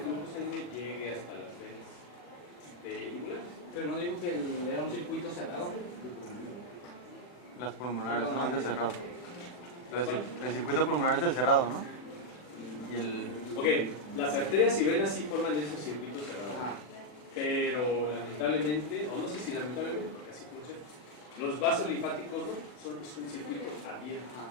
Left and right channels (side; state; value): right; late; 39 ms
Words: sanguíneo llegue hasta las venas yugulares. Pero no digo que era un circuito cerrado. Las pulmonares, ¿no? Es el cerrado. El circuito pulmonar es el cerrado, ¿no? Y el... Ok, las arterias y venas sí forman ese circuito cerrado. Ajá. Pero lamentablemente, o no sé si lamentablemente, porque así funciona, los vasos linfáticos no, es un circuito abierto. Ajá.